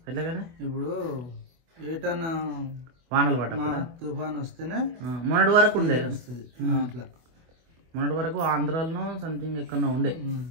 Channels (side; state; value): left; late; 24 ms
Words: ఎలాగనే ఇప్పుడు ఏటన్నా వానలు పడ్డ తుఫాన్ వస్తేనే మొన్నటి వరకు ఉండే అట్లా. మొన్నటి వరకు ఆంధ్రాలో సంథింగ్ ఎక్కడో ఉండే.